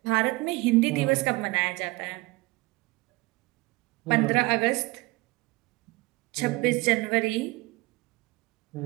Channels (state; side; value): quieter; left; 22.8 dB